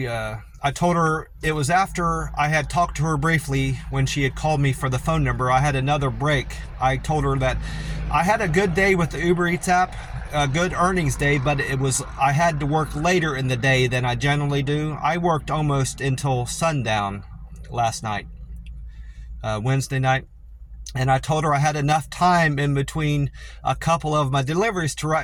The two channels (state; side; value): identical; both; correlation 1.00